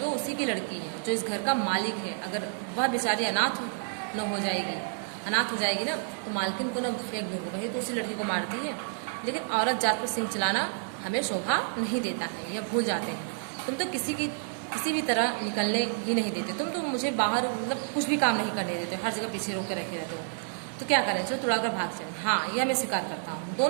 वो उसी की लड़की है जो इस घर का मालिक है, अगर वह बेचारी अनाथ हो जाएगी ना तो मालकिन को ना फेंक दूंगा, वही तो उसी लड़की को मारती है। लेकिन औरत जात पर सिंह चलाना हमें शोभा नहीं देता है, यह भूल जाते हैं। तुम तो किसी भी तरह निकलने ही नहीं देते, तुम तो मुझे बाहर मतलब कुछ भी काम नहीं करने देते, हर जगह पीछे रोक कर रखे रहते हो। तो क्या करें, चलो तुड़ा कर भाग चले। हाँ, यह मैं स्वीकार करता हूँ।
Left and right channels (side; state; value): left; silent; digital silence